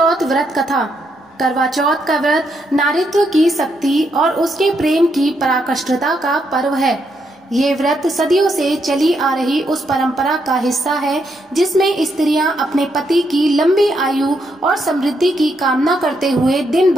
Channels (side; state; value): both; normal; correlation 0.78